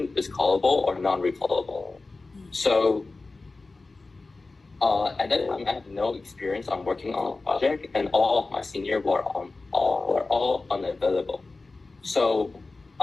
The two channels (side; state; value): right; quieter; 3.6 dB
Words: is callable or non-recallable. So at that time, I had no experience on working on a project, and all of my seniors were all unavailable. So